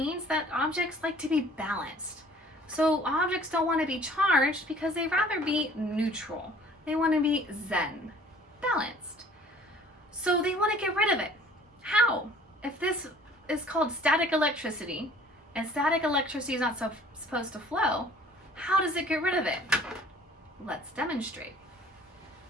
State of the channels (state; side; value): normal; both; correlation 0.52